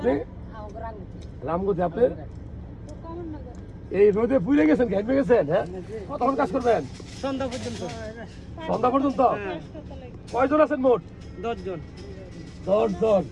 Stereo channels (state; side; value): identical; both; correlation 1.00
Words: রামগতি। আপনি এই রোদে পুড়ে গেছেন, ঘেমে গেছেন? হ্যাঁ, কতক্ষণ কাজ করবেন? সন্ধ্যা পর্যন্ত। সন্ধ্যা পর্যন্ত? হ্যাঁ। কয়জন আছেন মোট? 10 জন। 10 জন।